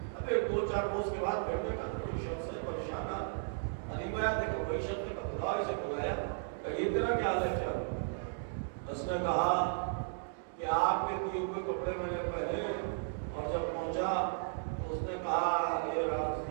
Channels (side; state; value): left; silent; digital silence